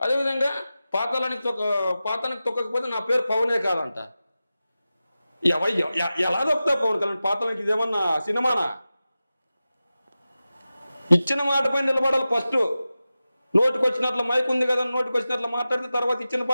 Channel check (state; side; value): inverted; both; correlation -0.94